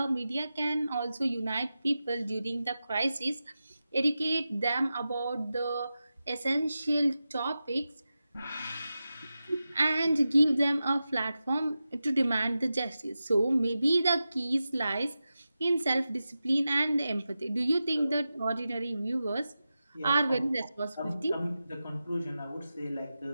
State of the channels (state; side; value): inverted; both; correlation -0.92